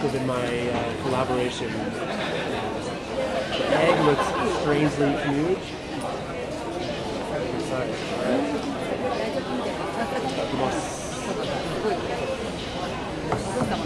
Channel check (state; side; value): identical; both; correlation 1.00